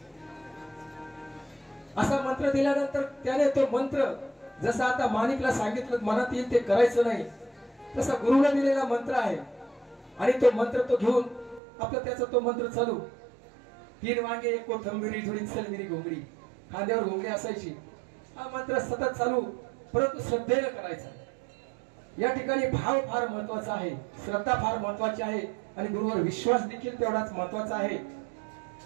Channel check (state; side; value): drops out; left; at 11.6 s